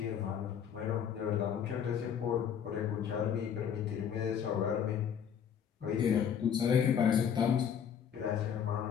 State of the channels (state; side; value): quieter; right; 8.1 dB